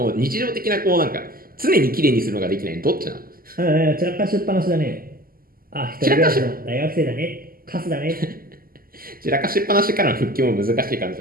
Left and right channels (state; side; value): late; left; 0.42 ms